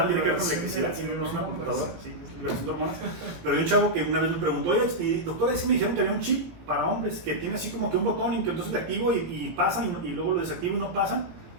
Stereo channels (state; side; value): late; left; 17 ms